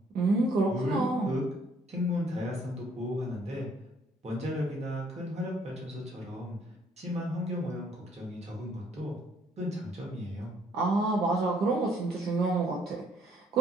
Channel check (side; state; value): both; normal; correlation 0.65